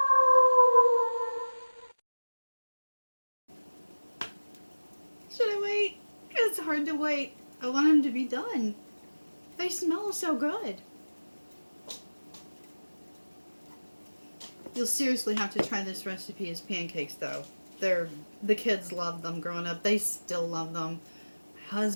Should I wait? It's hard to wait. I want them to be done. They smell so good. You'll seriously have to try this recipe as pancakes, though. The kids loved them growing up. They still love them. My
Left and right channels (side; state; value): both; inverted; correlation -1.00